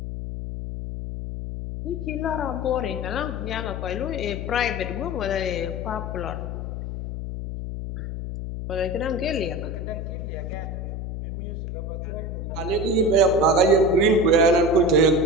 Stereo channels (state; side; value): noise; left; hum, 5 dB below the sound